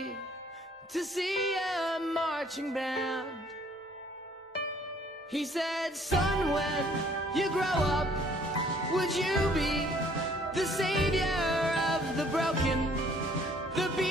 to see a marching band. He said, son, when you grow up, would you be the savior of the broken, the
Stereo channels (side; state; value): both; normal; correlation 0.60